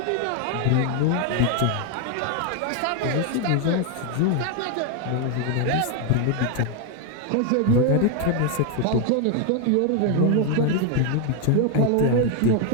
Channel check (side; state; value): both; different; correlation 0.01